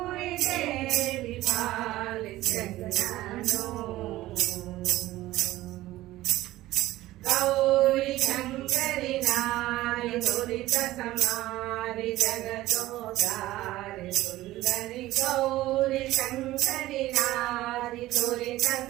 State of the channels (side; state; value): left; quieter; 16.4 dB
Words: ದೇವಿ ಪಾಲಿಸನ್ನನು ಗೌರಿ ಶಂಕರಿ ನಾರಿ ದುರಿತ ಸಮಾರಿ ಜಗದೋದಾರಿ ಸುಂದರಿ ಗೌರಿ ಶಂಕರಿ ನಾರಿ ದುರಿತ